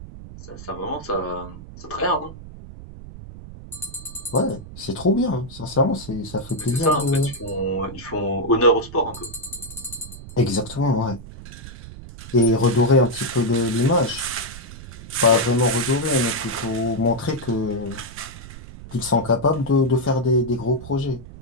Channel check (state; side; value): noise; right; rumble, 14 dB below the sound